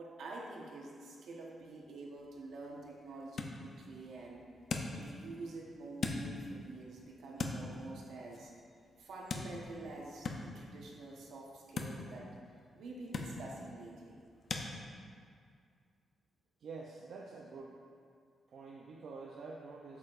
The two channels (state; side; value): normal; both; correlation 0.78